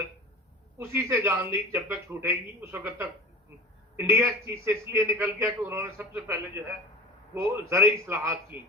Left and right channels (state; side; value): normal; both; correlation 0.35